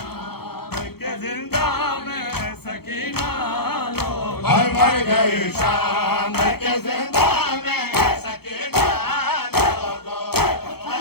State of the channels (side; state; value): right; late; 0.96 ms